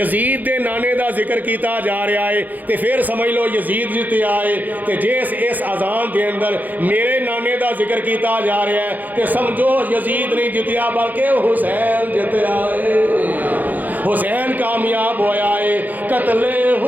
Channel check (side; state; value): left; late; 0.083 ms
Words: دے نانے دا ذکر کیتا جا رہا ہے تے پھر سمجھ لو یزید جتیا ہے. تے جس اس اذان دے اندر میرے نانے دا ذکر کیتا جا رہا ہے تے سمجھو یزید نہیں جتیا بلکہ حسین جتیا ہے. حسین کامیاب ہویا ہے. قتل